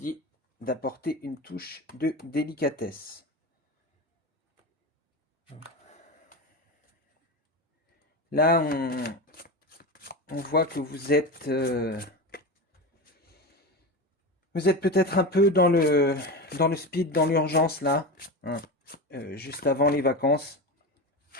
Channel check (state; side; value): normal; both; correlation 0.23